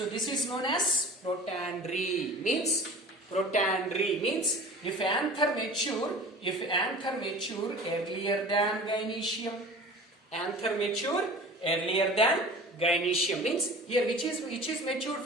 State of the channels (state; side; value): normal; both; correlation 0.40